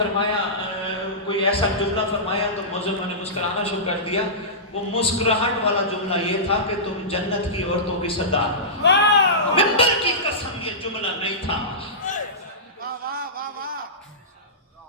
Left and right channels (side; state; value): both; normal; correlation -0.18